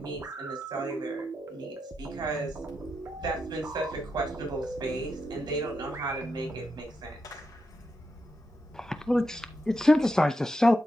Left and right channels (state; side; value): normal; both; correlation 0.86